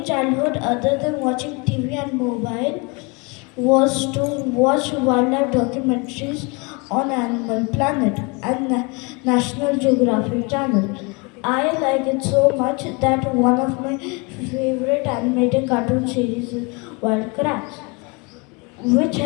childhood, other than watching TV and mobile, was to watch wildlife documentaries on Animal Planet and National Geographic Channel. I like it so much that one of my favorite animated cartoon series is Wild Kratts, which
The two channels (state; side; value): quieter; right; 29.4 dB